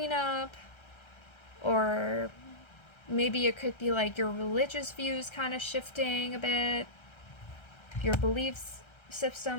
or maybe it could be like your religious views kind of shifting a bit, your beliefs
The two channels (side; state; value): right; late; 1.3 ms